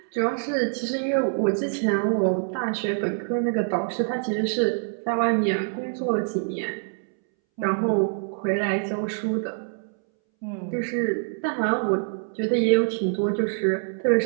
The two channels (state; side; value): silent; left; 62 dB below the other